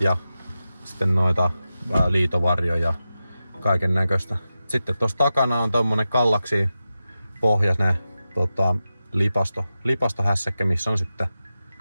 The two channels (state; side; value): inverted; both; correlation -0.92